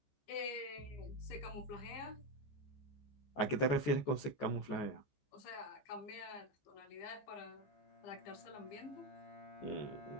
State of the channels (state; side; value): late; right; 14 ms